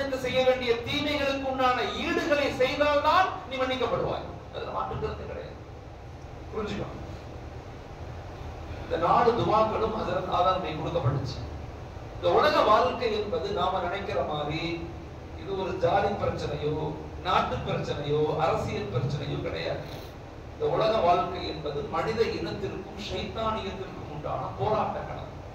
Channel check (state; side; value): identical; both; correlation 1.00